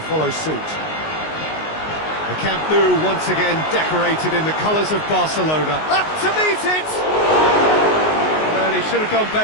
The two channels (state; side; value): late; right; 19 ms